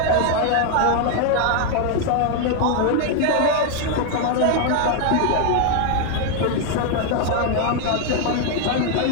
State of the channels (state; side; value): different; both; correlation 0.00